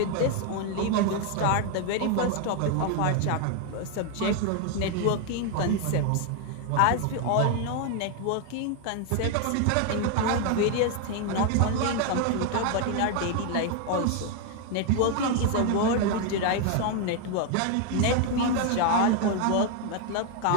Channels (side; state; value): both; different; correlation 0.01